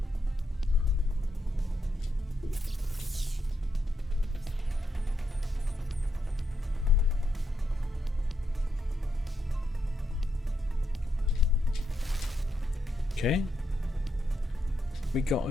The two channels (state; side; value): normal; both; correlation 0.81